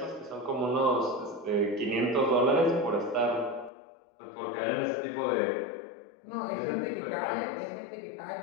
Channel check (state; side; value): drops out; right; at 3.7 s